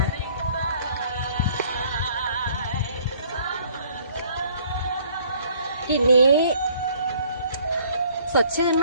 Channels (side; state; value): both; inverted; correlation -0.58